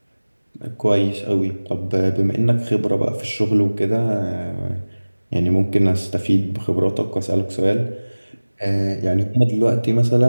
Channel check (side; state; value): both; inverted; correlation -1.00